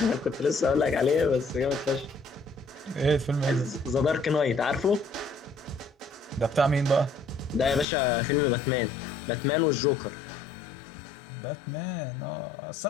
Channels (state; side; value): drops out; right; at 7.9 s